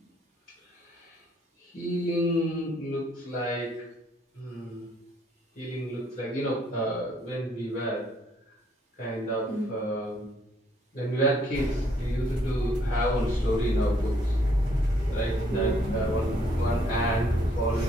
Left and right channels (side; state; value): both; normal; correlation 0.67